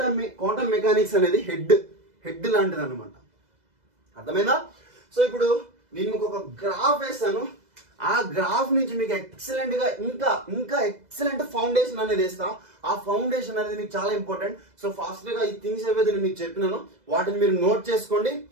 మెకానిక్స్ అనేది హెడ్ లాంటిది అనమాట. అర్థమైందా? సో ఇప్పుడు నేను మీకు ఒక గ్రాఫ్ వేస్తాను, ఆ గ్రాఫ్ నుంచి మీకు ఎక్సలెంట్ గా ఇంకా ఎక్సలెంట్ ఫౌండేషన్ అనేది వేస్తా. ఆ ఫౌండేషన్ అనేది మీకు చాలా ఇంపార్టెంట్. సో ఫాస్ట్ గా ఈ థింగ్స్ ఏవైతే నేను మీకు చెప్పినానో వాటిని మీరు నోట్ చేసుకోండి.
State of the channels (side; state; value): left; late; 2.0 ms